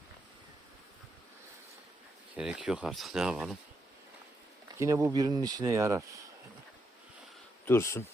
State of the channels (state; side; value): normal; both; correlation 0.81